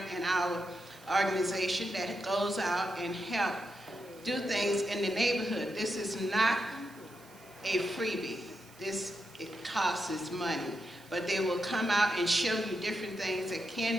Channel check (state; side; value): noise; right; hiss, 26 dB below the sound